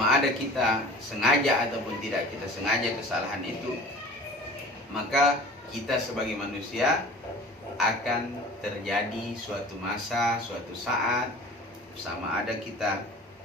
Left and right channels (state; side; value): normal; both; correlation 0.42